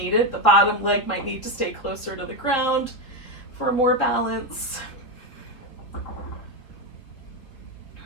The bottom leg might need to stay closer to the ground for more balance.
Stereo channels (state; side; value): late; right; 3.9 ms